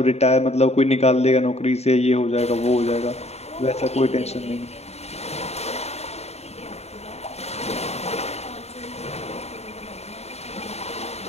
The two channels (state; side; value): late; right; 0.31 ms